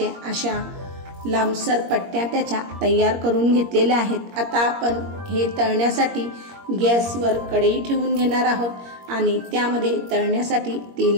अशा लांबसर पट्ट्या त्याच्या तयार करून घेतलेल्या आहेत। आता आपण हे तळण्यासाठी गॅसवर कढई ठेवून घेणार आहोत आणि त्यामध्ये तळण्यासाठी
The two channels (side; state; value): left; late; 21 ms